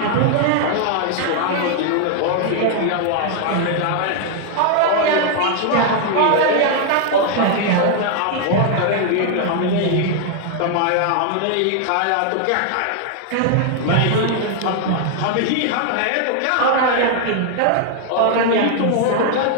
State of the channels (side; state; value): both; different; correlation 0.00